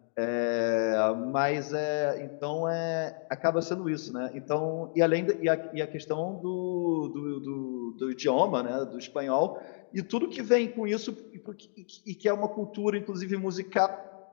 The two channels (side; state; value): right; silent; digital silence